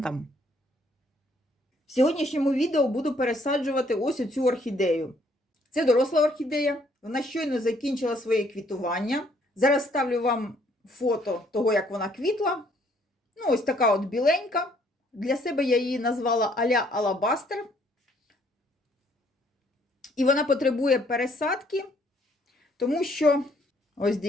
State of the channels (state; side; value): normal; both; correlation 0.65